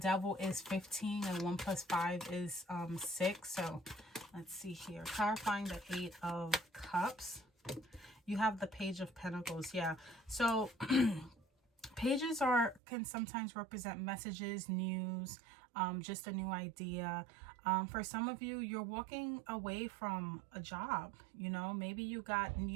is 15 and 1 plus 5 is 6. So let's see here. Clarifying the 8 of Cups. You have the Page of Pentacles. Yeah. So pages can sometimes represent messages, news, just a new idea. For some of you, you're walking away from a job. You know, maybe you got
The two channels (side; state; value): left; drops out; at 12.8 s